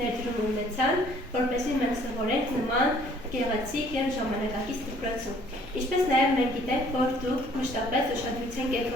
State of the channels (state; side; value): normal; both; correlation 0.59